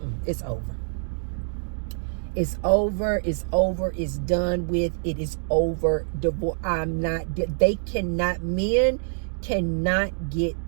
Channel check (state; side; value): silent; left; digital silence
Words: it's over. It's over, it's over, it's done with, it is over. Divorce. Men cannot